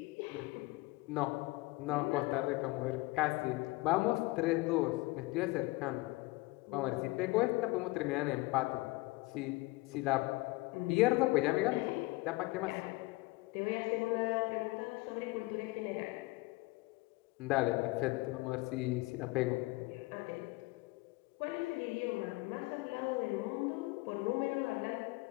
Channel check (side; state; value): right; quieter; 22.7 dB